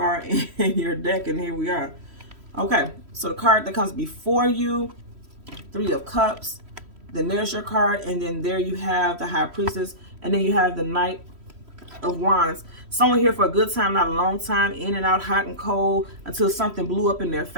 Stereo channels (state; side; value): late; left; 3.1 ms